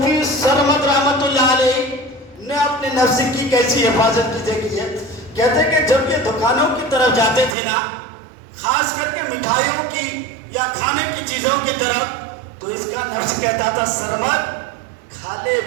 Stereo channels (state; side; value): drops out; left; at 7.6 s